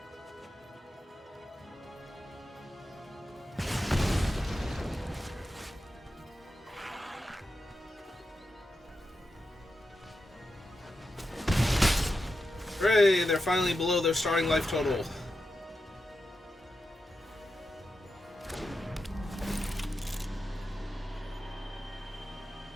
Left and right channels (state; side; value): normal; both; correlation 0.89